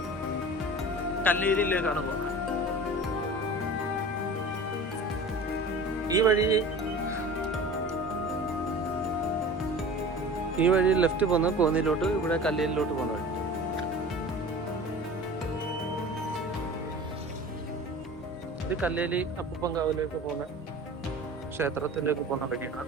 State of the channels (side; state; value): both; normal; correlation 0.38